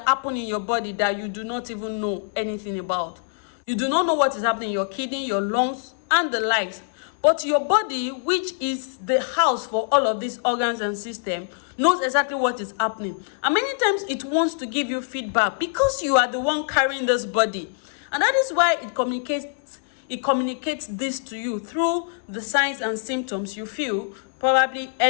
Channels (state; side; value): silent; right; 63 dB below the other